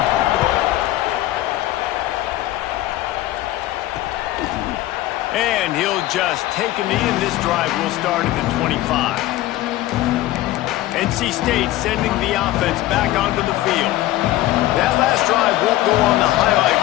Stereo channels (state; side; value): quieter; right; 15.7 dB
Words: And he'll just take a knee, and this drive will start at the 25. NC State sending the offense back onto the field. That last drive won't go on the highlight